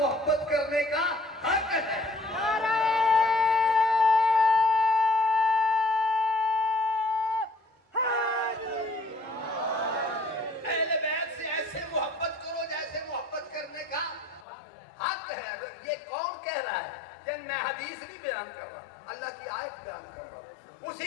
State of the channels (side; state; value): right; drops out; at 14.5 s